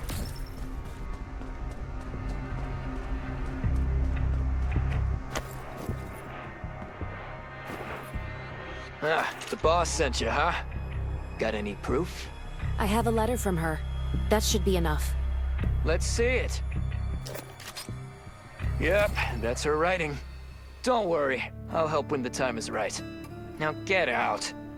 Ah, the boss sent you, huh? Got any proof? I have a letter from her. That should be enough. Let's see it. Yep, that's her writing. Don't worry, I'll help when the time is right. Now get out.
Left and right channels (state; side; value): identical; both; correlation 1.00